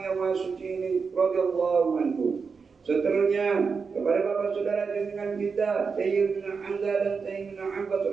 yang Maha Suci ini radhiyallahu anhu. Seterusnya kepada bapak saudara junjungan kita Sayyidina Hamzah dan Sayyidina Abbas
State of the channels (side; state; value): left; quieter; 5.3 dB